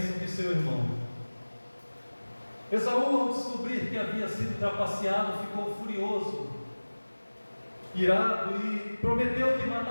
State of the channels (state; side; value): inverted; both; correlation -1.00